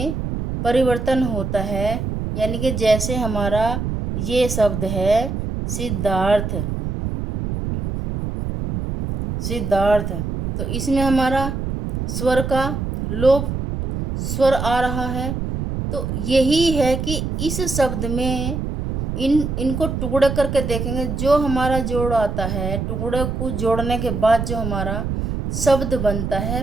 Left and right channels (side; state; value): right; noise; rumble, 3 dB below the sound